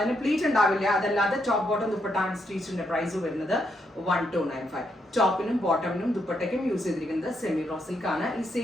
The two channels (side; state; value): both; normal; correlation 0.78